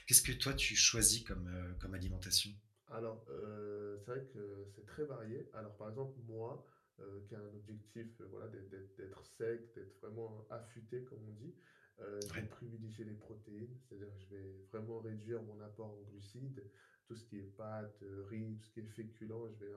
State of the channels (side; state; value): both; identical; correlation 1.00